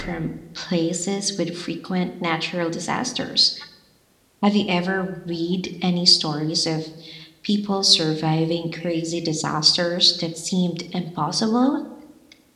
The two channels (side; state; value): both; identical; correlation 1.00